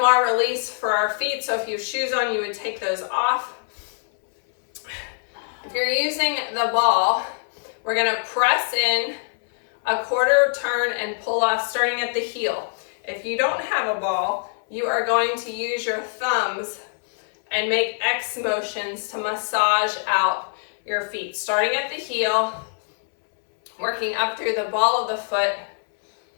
release for our feet. So if you have shoes on, you would take those off. If you're using the ball, we're going to press in a quarter turn and pull off starting at the heel. If you don't have a ball, you are going to use your thumbs and make X motions to massage out your feet, starting at the heel, working up through the ball of the foot,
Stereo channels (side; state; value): right; silent; 61 dB below the other